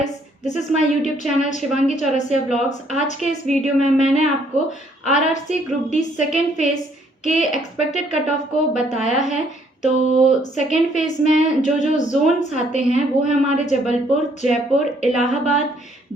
this is my YouTube channel Shivangi Chaurasia blogs. आज के इस video में मैंने आपको RRC group D second phase के एक्सपेक्टेड कट ऑफ को बताया है। तो सेकेंड फेज़ में जो जो जोन्स आते हैं वो है हमारे जबलपुर, जयपुर, इलाहाबाद,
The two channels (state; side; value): normal; both; correlation 0.66